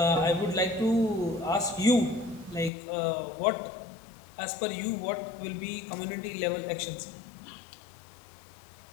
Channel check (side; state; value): right; drops out; at 2.7 s